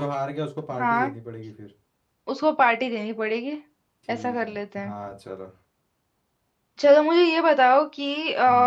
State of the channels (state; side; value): identical; both; correlation 1.00